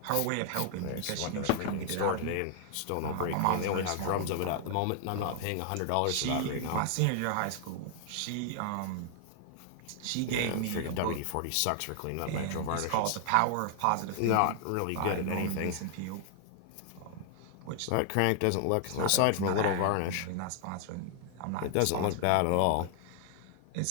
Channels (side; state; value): both; different; correlation 0.00